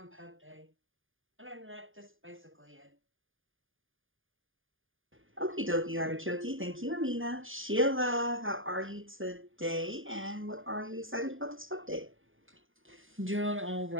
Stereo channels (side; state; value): left; late; 0.59 ms